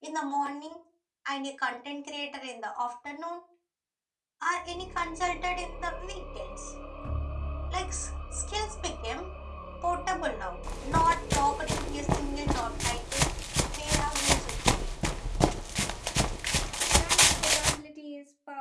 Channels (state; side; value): identical; both; correlation 1.00